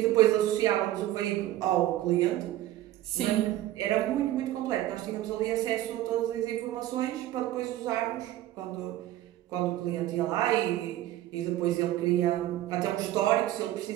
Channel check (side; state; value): left; quieter; 14.4 dB